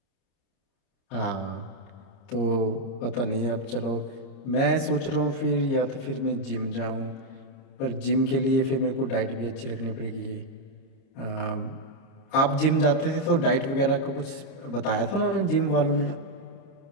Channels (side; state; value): right; late; 30 ms